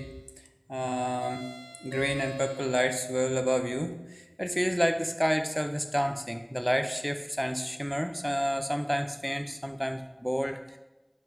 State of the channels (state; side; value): identical; both; correlation 1.00